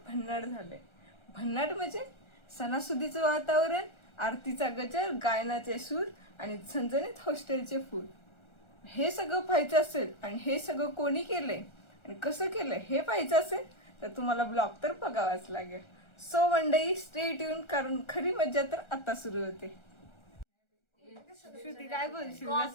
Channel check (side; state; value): right; late; 1.4 ms